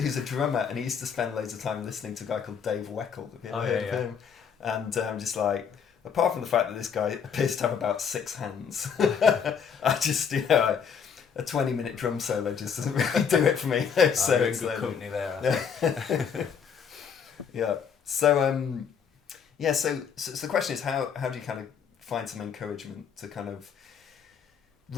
a drummer, and he used to spend loads of time listening to a guy called Dave Weckl. Have you ever heard of him? And I'm just like, apart from the fact that this guy appears to have about 6 hands, I just, a 20-minute drum solo just doesn't really do it for me. So it's good company there. So the question is, how do you kind of find some encouragement to kind of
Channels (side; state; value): right; quieter; 7.0 dB